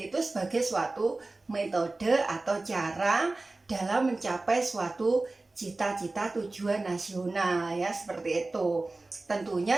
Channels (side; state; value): left; quieter; 3.2 dB